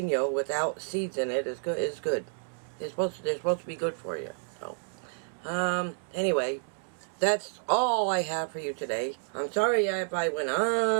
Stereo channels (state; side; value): silent; left; digital silence